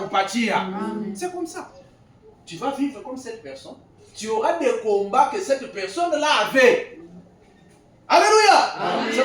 C'est comme ça. Tu vas vivre comme cette personne. Tu auras des combats que cette personne-là avait. Alléluia. C'est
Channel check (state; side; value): identical; both; correlation 1.00